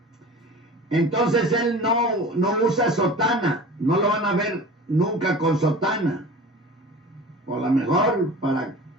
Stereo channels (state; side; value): normal; both; correlation 0.38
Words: entonces él no usa sotana, no lo van a ver nunca con sotana. O a lo mejor para,